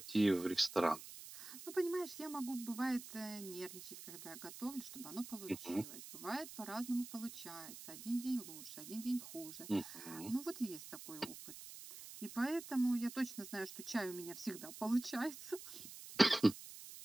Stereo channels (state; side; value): noise; right; hiss, 12 dB below the sound